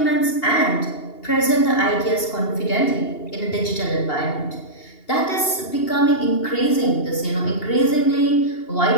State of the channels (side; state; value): right; late; 2.8 ms